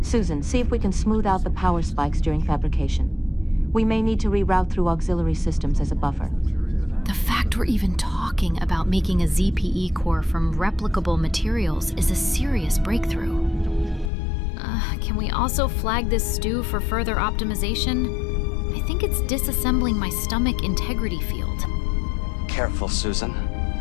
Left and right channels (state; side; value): drops out; right; at 14.1 s